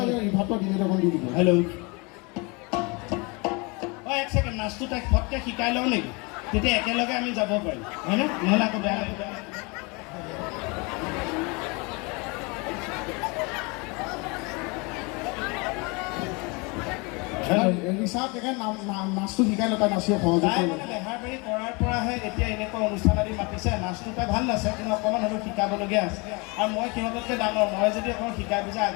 এই ভাতটো ডিলেট অকণ দি দিব। হেল্ল' ঐ এক ছেকেণ্ড, নাচটো তাইক ফটকৈ শিকাই লওঁ নেকি? তেতিয়া একেলগে আমি যাব পাৰিম হয়নে? নহ'লে আকৌ বেয়া লাগিব। ৰিচাৰ্ট নাচটো শিকাই লওঁ, তাই নাচিব সহযোগ তাই কৰিব। মানে বেহাৰবাৰী কৰাৰ পৰাহে এতিয়া এনেকুৱা অনুষ্ঠান আদি মাতিছে। নাচটো তাই ভাল নাচে, কিন্তু অকণমান হ'লেও শিকাবলগীয়া আছে। আৰু মই সিহঁততকৈ ডাঙৰ, মই যদি অকণ শিকাই পিছে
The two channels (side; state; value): right; quieter; 28.9 dB